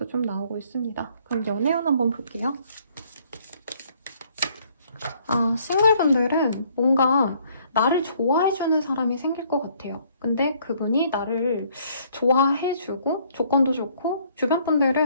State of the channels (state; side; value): inverted; both; correlation -0.63